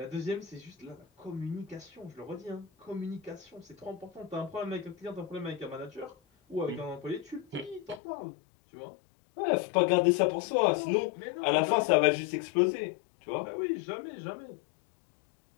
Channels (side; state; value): right; drops out; at 8.0 s